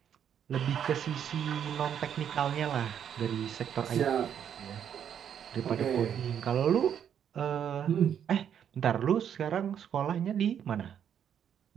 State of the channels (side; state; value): left; quieter; 8.8 dB